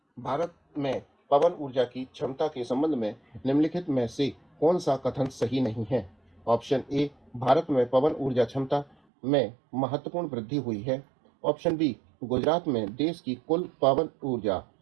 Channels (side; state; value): left; drops out; at 9.0 s